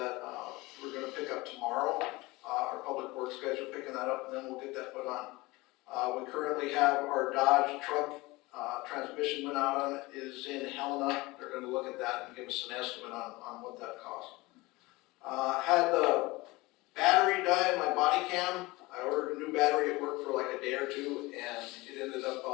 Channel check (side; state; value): right; quieter; 21.8 dB